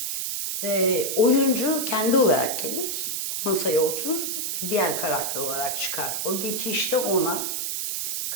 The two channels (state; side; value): noise; right; hiss, 2 dB below the sound